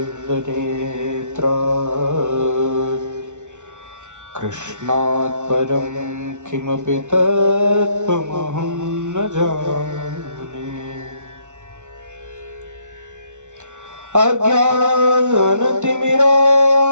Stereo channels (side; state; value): left; late; 0.85 ms